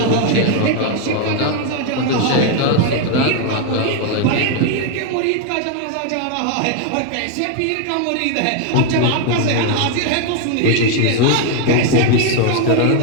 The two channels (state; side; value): different; both; correlation 0.01